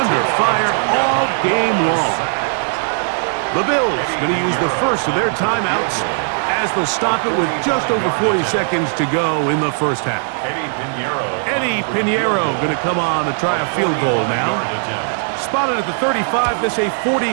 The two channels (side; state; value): left; silent; 59 dB below the other